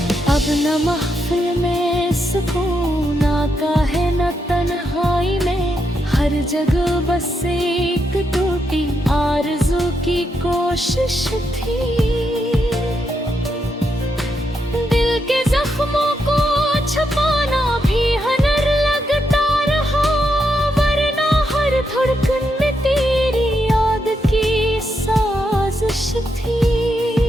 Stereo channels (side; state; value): both; normal; correlation 0.82